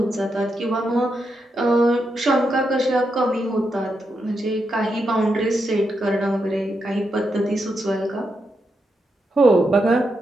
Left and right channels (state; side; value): normal; both; correlation 0.84